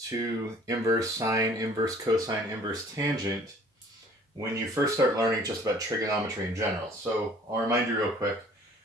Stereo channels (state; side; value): normal; both; correlation 0.53